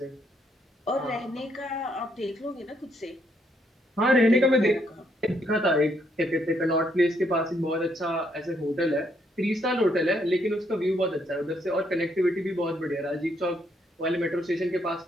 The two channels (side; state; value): both; normal; correlation 0.73